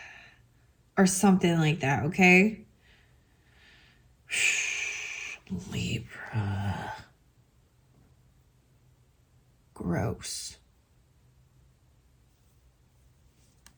Or something like that, okay? Libra. Gross.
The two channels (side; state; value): both; identical; correlation 1.00